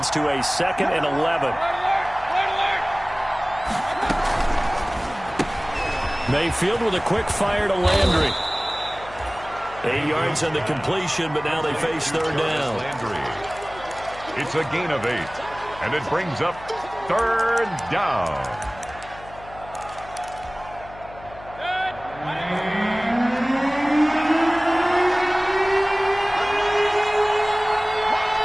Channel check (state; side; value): noise; left; hum, 18 dB below the sound